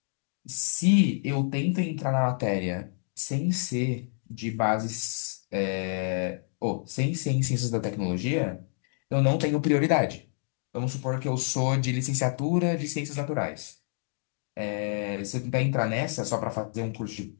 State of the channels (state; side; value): silent; right; digital silence